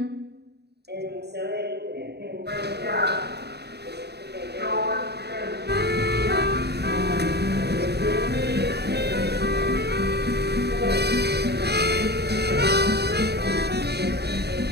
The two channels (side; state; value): left; late; 0.48 ms